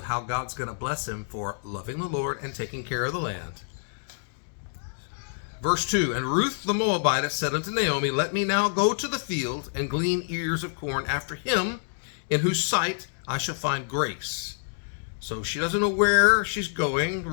how God's going to bless him for loving the Lord and taking care of the land. Verse 2, and Ruth the Moabitess said unto Naomi, let me now go to the field and glean ears of corn after him, in whose sight I shall find grace. So she doesn't know where she's going.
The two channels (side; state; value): right; silent; 60 dB below the other